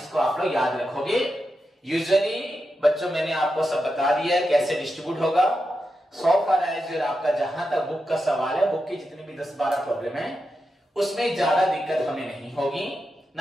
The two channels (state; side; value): normal; both; correlation 0.88